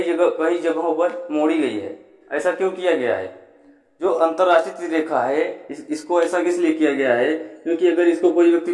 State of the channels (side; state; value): both; identical; correlation 1.00